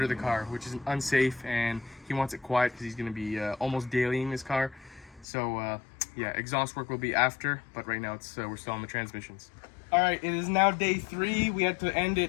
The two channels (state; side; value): drops out; right; at 5.2 s